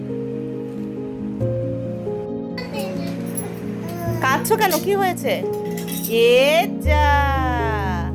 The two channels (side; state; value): both; identical; correlation 1.00